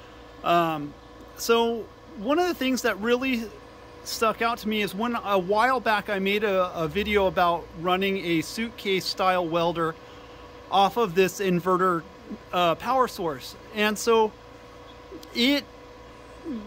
So one of the things that really stuck out to me is when a while back I made a video about running a suitcase style welder off of this inverter power source. And so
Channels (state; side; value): identical; both; correlation 1.00